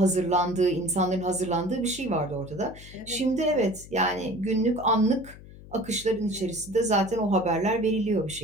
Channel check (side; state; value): left; noise; hum, 18 dB below the sound